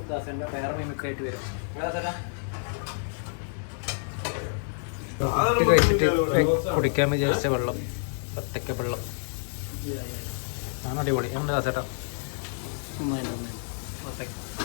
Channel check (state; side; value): silent; right; 59 dB below the other